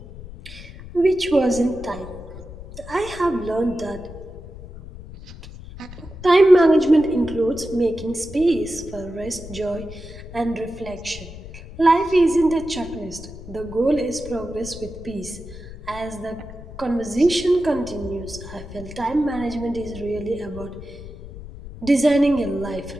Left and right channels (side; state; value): left; noise; rumble, 14 dB below the sound